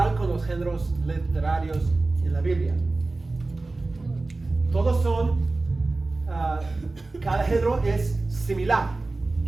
con los géneros literarios en la Biblia. Todos son, cada género es similar.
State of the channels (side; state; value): left; quieter; 3.3 dB